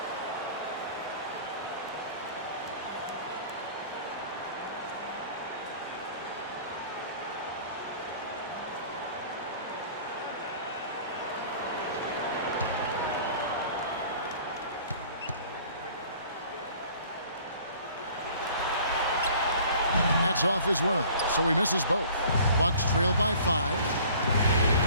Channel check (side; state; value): both; inverted; correlation -0.50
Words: That's off as well, so he misses both. Bucks trail by 5.